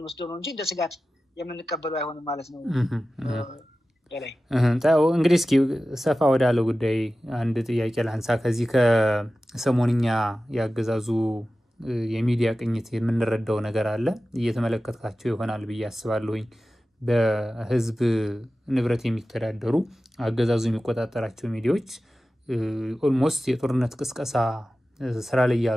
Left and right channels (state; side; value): normal; both; correlation 0.95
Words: ነው እንጂ እንደ ስጋት የምንቀበለው አይሆንም ማለት ነው። እንግዲህ እስኪ ሰፋ ወዳለው ጉዳይ አንድ ጥያቄ ላንሳ። ከዚህ ከሰሞንኛ ያገዛዙ የሚዲያ ቅኝት የምንረዳው ነገር አለ እየተመለከታቸው ይሆናል ብዬ አስባለሁኝ። በህዝብ ንብረት የሚተዳደሩ አገዛዙ የሚቆጣጠራቸው ሚዲያዎች ኦልሞስት የጦርነት ቅስቀሳ ስራ ላይ